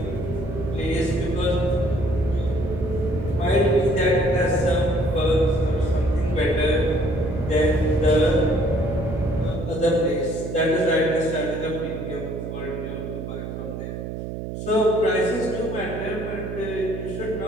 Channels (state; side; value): noise; right; hum, 7 dB below the sound